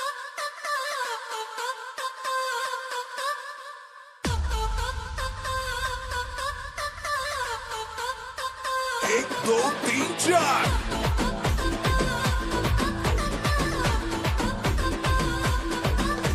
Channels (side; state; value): both; identical; correlation 1.00